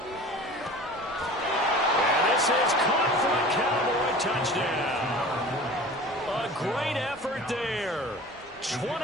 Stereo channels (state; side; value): normal; both; correlation 0.40